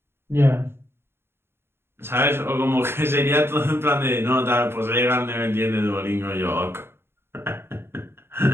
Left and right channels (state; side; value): late; left; 0.11 ms